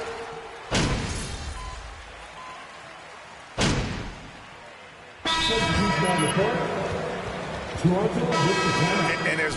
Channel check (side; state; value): both; identical; correlation 1.00